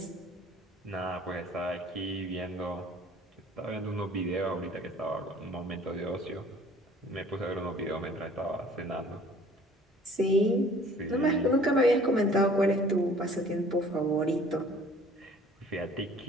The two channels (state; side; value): normal; both; correlation 0.52